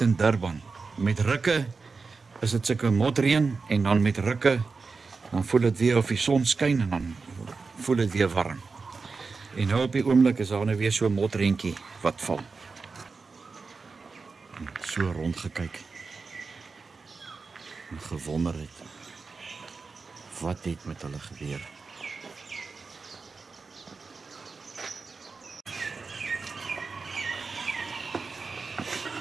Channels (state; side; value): quieter; left; 4.5 dB